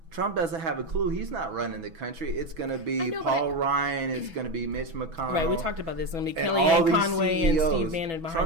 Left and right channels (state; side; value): late; left; 6.1 ms